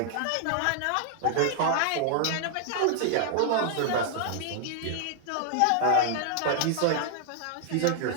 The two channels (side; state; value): both; different; correlation 0.00